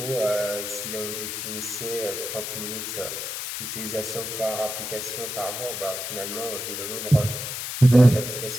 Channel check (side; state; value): left; noise; hiss, 5 dB below the sound